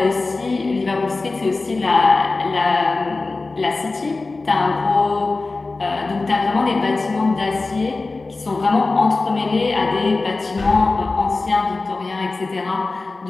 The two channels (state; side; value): quieter; right; 3.5 dB